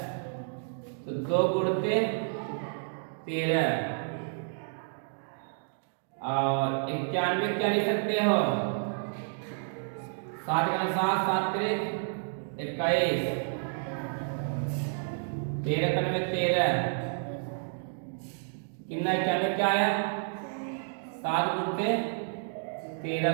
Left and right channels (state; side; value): silent; left; digital silence